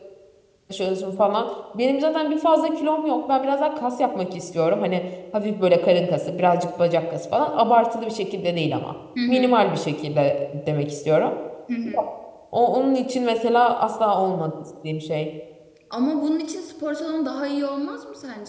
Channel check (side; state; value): both; identical; correlation 1.00